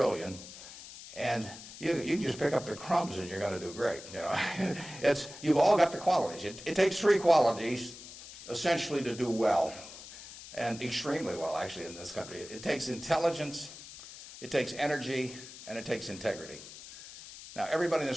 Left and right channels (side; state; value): left; noise; hiss, 15 dB below the sound